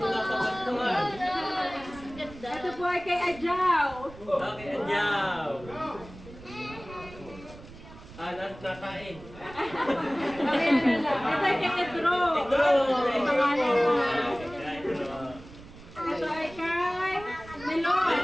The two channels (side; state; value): right; noise; rumble, 18 dB below the sound